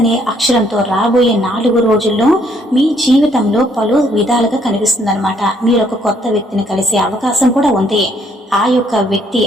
అక్షరంతో రాబోయే 4 రోజుల్లో మీ జీవితంలో పలు విధాలుగా కనిపిస్తుంది అనమాట. మీరు ఒక కొత్త వ్యక్తిని కలిసే అవకాశం కూడా ఉంది. ఆ యొక్క వ్యక్తి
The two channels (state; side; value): normal; both; correlation 0.68